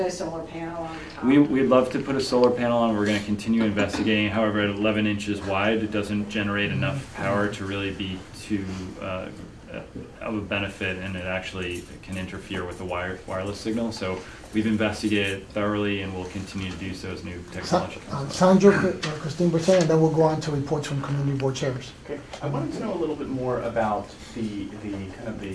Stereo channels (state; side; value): identical; both; correlation 1.00